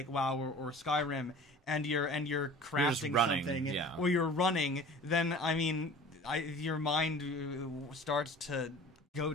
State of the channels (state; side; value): normal; both; correlation 0.43